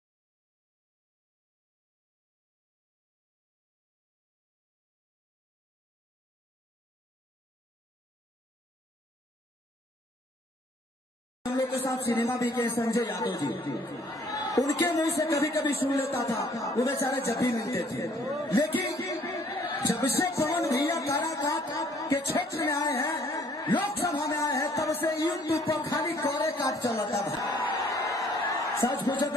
लोग के साथ सिनेमा भी किए, संजय यादव जी, उनके मुंह से कभी कभी सुन लेता था, वो बेचारे जब भी मिलते थे। लेकिन जब से पवन भैया काराकाट के क्षेत्र में आए हैं, लोकसभा में आए हैं, तब से यूट्यूब पर खाली कोरे काट चलता था। सच पूछो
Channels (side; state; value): both; normal; correlation 0.60